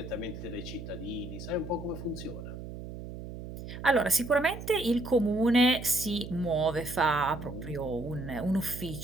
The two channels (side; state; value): right; noise; hum, 10 dB below the sound